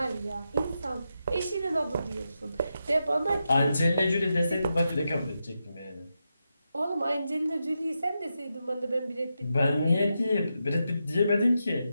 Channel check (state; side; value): inverted; both; correlation -0.87